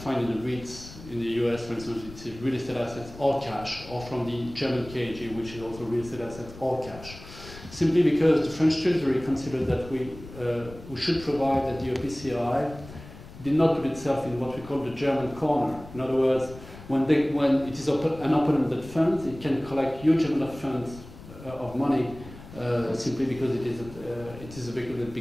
in the REITs in the US, for instance, it's real estate assets or cash, or from the German KG, which is also real estate assets or cash. Simply because the French Treasury considered that we should provide that the OPCI did not put itself in what we call the German corner. In other words, when it is an open-ended fund, it can collect huge amount of funds of money simply because it is a vehicle that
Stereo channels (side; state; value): left; noise; rumble, 16 dB below the sound